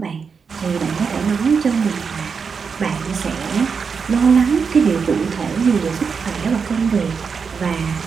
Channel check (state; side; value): quieter; left; 5.7 dB